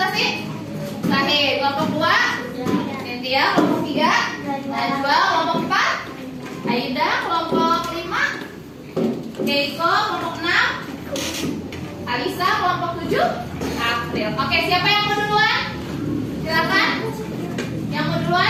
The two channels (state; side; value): identical; both; correlation 1.00